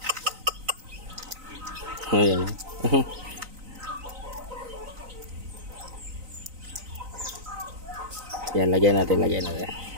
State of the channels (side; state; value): left; late; 3.9 ms